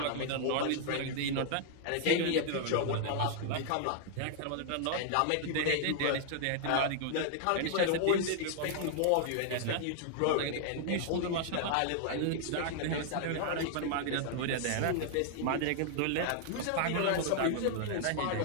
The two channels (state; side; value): different; both; correlation -0.01